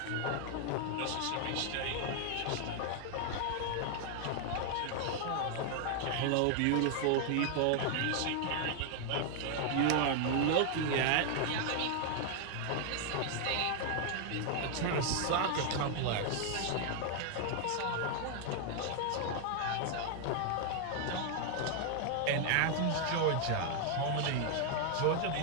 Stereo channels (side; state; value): both; different; correlation 0.00